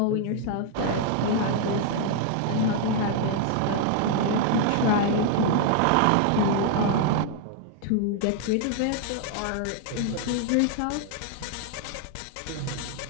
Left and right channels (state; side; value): different; both; correlation 0.00